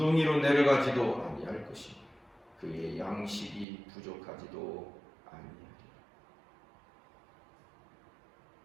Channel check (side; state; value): left; drops out; at 3.7 s